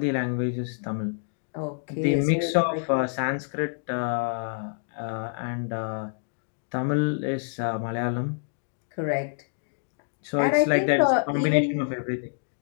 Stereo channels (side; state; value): right; silent; digital silence